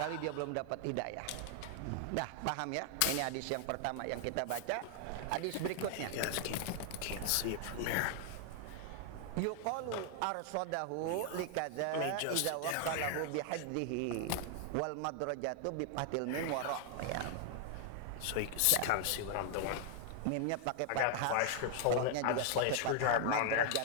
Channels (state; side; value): different; both; correlation 0.00